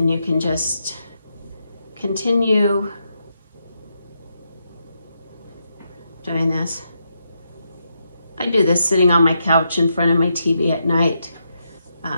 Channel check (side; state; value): both; inverted; correlation -0.82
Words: you can just continue doing this. I do this sitting on my couch in front of my TV at night,